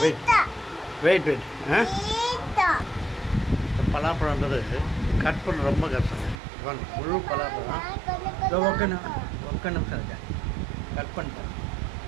வெயிட் பலாப்பழன்றது கட் பண்ண ரொம்ப கஷ்டம். முழு பலாப்பழம் ஒக்க நிமிஷம் இருக்கேன் கட் பண்ணிட்டேன்.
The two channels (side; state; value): left; drops out; at 6.4 s